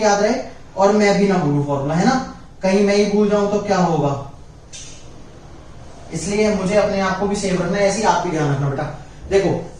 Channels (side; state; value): both; identical; correlation 1.00